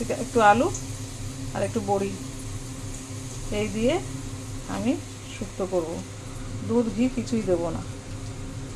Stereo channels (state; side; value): identical; both; correlation 1.00